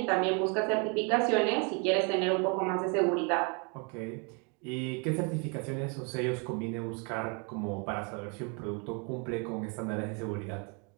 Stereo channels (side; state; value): left; quieter; 34.6 dB